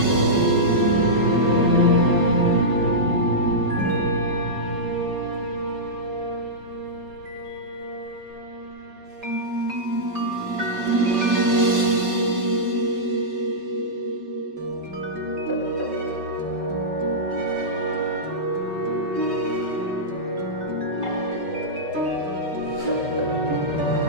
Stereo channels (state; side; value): late; left; 5.3 ms